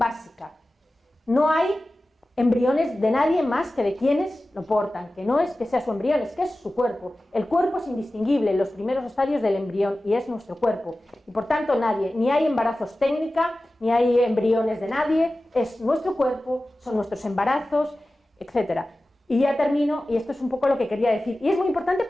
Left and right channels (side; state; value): both; normal; correlation 0.96